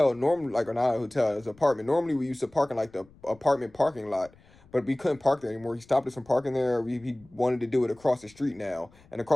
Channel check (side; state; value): left; noise; rumble, 27 dB below the sound